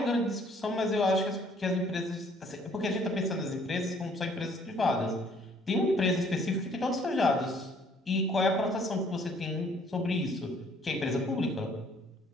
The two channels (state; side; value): normal; both; correlation 0.61